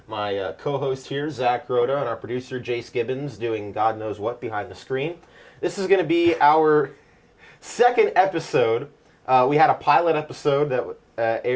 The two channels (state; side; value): identical; both; correlation 1.00